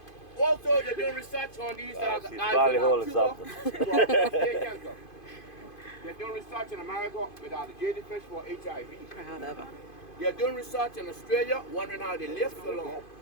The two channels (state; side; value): late; right; 2.5 ms